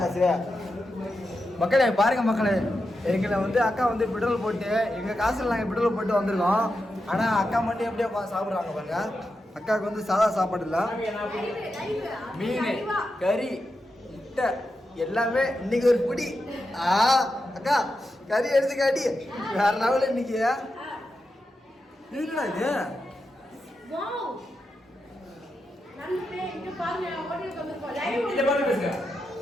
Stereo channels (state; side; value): normal; both; correlation 0.88